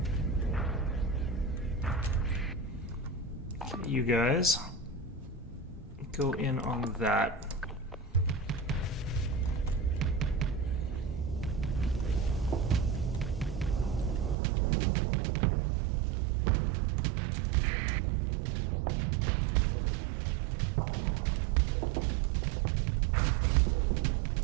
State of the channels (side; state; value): left; drops out; at 14.4 s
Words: Okay, you guys go in on that.